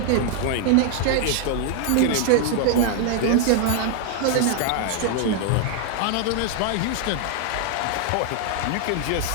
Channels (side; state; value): both; different; correlation 0.00